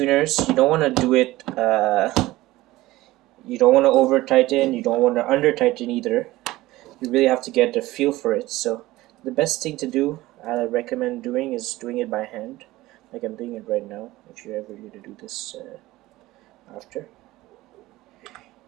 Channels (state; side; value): quieter; left; 17.8 dB